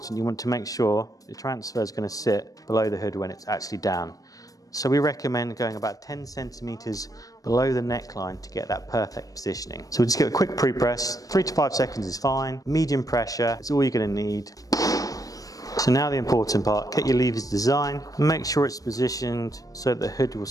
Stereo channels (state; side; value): late; right; 0.17 ms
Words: you want to make sure the transfer is going to sit below the hood when it's actually down. So we recommend going about 10 centimeters below the neckline to get that perfect positioning. So we'll just give it a quick pre-press. 3 to 5 seconds is fine. Medium pressure is all you're going to need. So now the important part, get your levers design, make sure it's positioned so that the hood will